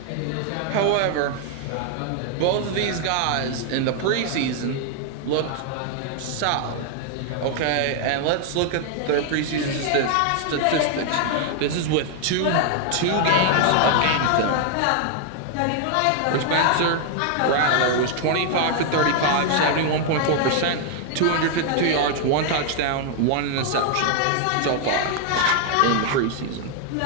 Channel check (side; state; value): both; different; correlation 0.00